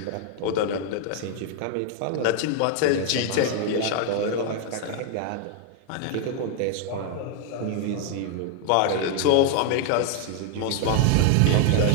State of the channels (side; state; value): both; different; correlation 0.00